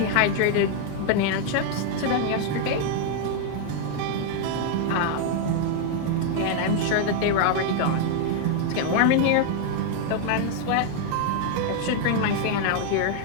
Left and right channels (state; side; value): different; both; correlation 0.00